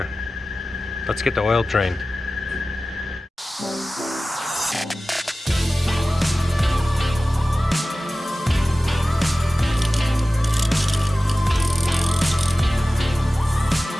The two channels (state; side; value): normal; both; correlation 0.96